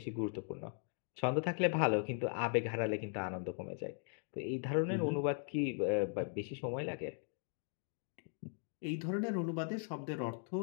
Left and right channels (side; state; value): right; silent; 52 dB below the other